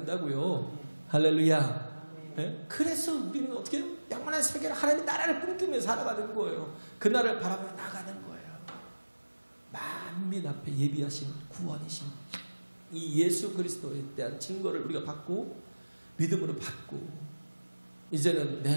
할렐루야. 네? 그래서 우리는 어떻게 해요? 영원한 세계를 하나님의 나라를 꿈꾸며 살아가는 거예요. 그 나라를 바라보며 나가는 거예요. 만민 앞에 예비하신 구원이신 이 예수 그리스도에 대한 증거를 우리가 받고 믿음으로 받고 이제는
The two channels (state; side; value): inverted; both; correlation -1.00